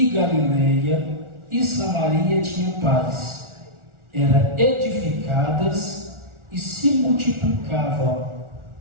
Galileia e Samaria tinham paz. Eram edificadas e se multiplicavam,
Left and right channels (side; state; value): left; late; 1.4 ms